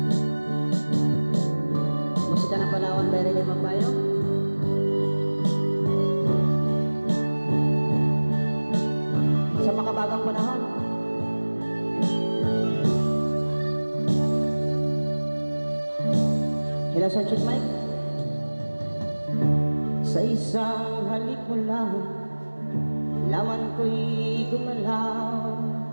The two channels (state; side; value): inverted; both; correlation -1.00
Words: Musika ng Palawan, Berry Limang Payo. Sa makabagang panahon. Ilang sa check, mate? Sa isang halik mo lang, laman ko'y gumalaw.